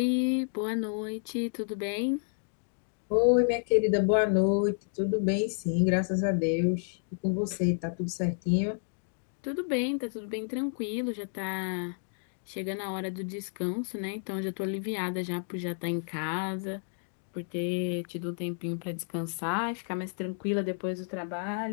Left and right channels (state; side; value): silent; right; digital silence